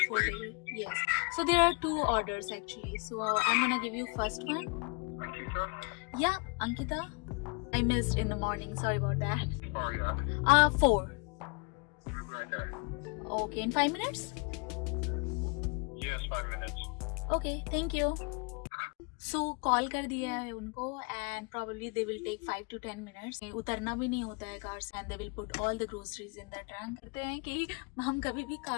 4 days? Yes. So there are 2 orders actually. So I'm gonna give you first one. Ankita? Yeah, Ankita. I missed in the morning. Sorry about that. Oh, yeah. 4. Right there. Okay, in 5 minutes? Yes, 5 minutes. Okay, thank you. So call कर दिया है उनको and probably they will take 5 to 10 minutes. उतरना भी नहीं होता है car से and they will put all the groceries in the trunk. कहते हैं कि हम कभी भी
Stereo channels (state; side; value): quieter; right; 32.1 dB